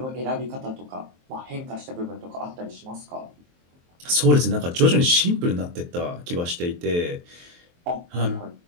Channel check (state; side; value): late; left; 23 ms